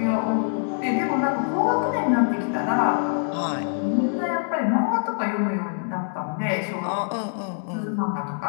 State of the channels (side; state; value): right; silent; 62 dB below the other